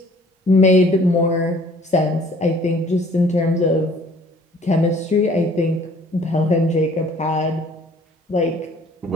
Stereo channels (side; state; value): both; normal; correlation 0.55